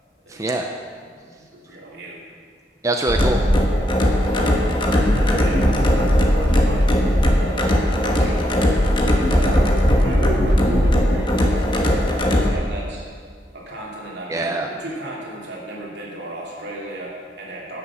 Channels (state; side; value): normal; both; correlation 0.80